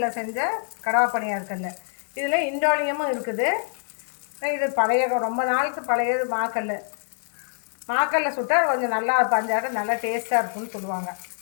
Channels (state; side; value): silent; right; digital silence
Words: செஞ்ச கடவா பணியாரக்கல்ல. இதில் இண்டோலியமும் இருக்குது. இது ரொம்ப நாளுக்கு பழையது மாக்கல்ல சுட்டால் கொஞ்சம் நல்லா பஞ்சாட்டம் நல்லா டேஸ்ட்டாக இருக்குன்னு சொல்லுவாங்க.